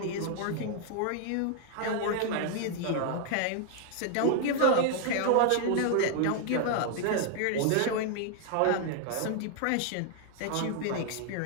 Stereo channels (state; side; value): different; both; correlation 0.00